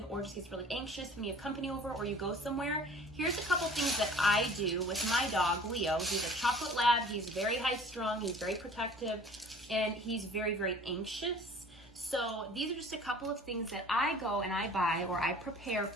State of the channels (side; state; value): both; normal; correlation 0.48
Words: or just gets really anxious when you have company over or you go somewhere, here's a couple things that I do with my dog, Leo. He's a chocolate lab. He's very high strung. He's very protective, and he's very, very anxious. So these are just a couple of things that I go and I buy or I prepare